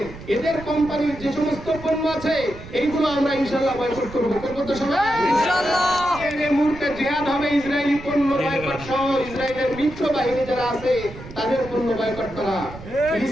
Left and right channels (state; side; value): noise; right; rumble, 14 dB below the sound